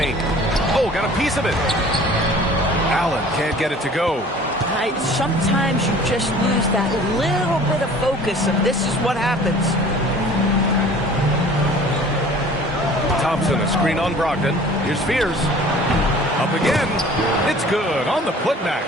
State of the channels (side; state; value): both; normal; correlation 0.47